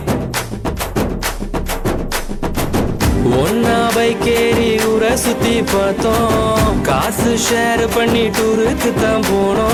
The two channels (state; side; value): identical; both; correlation 1.00